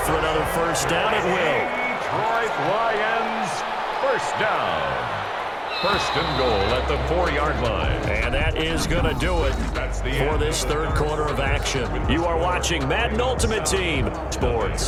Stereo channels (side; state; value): both; identical; correlation 1.00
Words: for another 1st down. It will. Detroit Lions, 1st down. 1st and goal at the 4-yard line. And that is going to do it for this 3rd quarter of action. You are watching Madden Ultimate Team